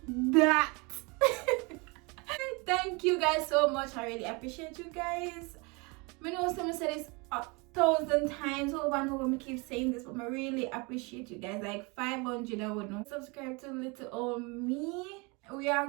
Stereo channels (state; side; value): quieter; left; 28.7 dB